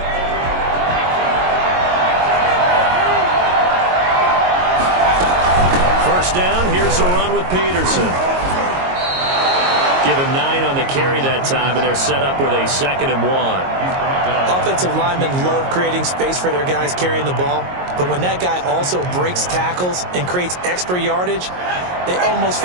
Down. Here's a run with Peterson. Give him 9 on the carry that time, and they're set up with a 2nd and 1. Offensive linemen love creating space for their guys carrying the ball, but when that guy also breaks tackles and creates extra yardage, they almost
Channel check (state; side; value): late; left; 22 ms